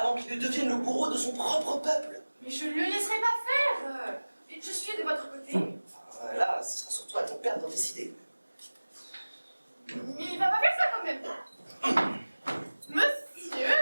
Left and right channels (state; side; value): inverted; both; correlation -1.00